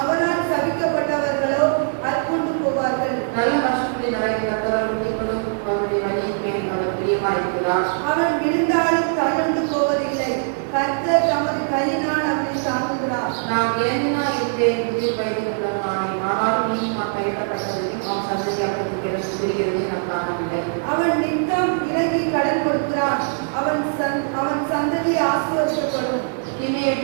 அவரால் சபிக்கப்பட்டவர்களோ அற்புண்டு போவார்கள். அவன் விழுந்தாலும் தள்ளுண்டு போவதில்லை. கர்த்தர் தமது கையினால் அவனை தாங்குகிறார். அவன் நித்தம் இறங்கி கடன் கொடுக்கிறான். அவன் சந்ததி ஆசீர்வதிக்கப்படும்.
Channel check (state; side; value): silent; left; 65 dB below the other